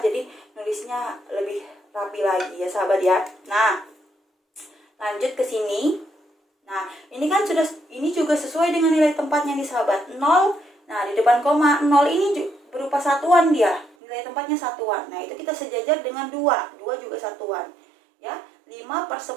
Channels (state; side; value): drops out; left; at 14.0 s